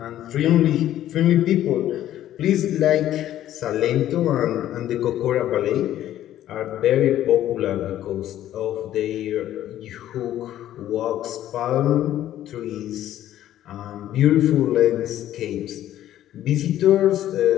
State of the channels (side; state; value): right; quieter; 12.5 dB